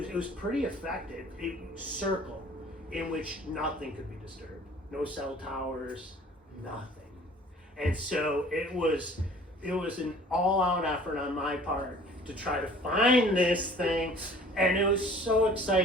was pretty effective. A circle in which nothing could be disturbed. No cell towers, nothing. And so it was an all-out effort on my part to try to find this thing. And it was so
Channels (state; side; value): normal; both; correlation 0.50